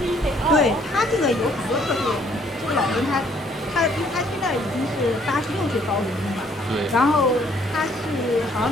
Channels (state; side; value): normal; both; correlation 0.64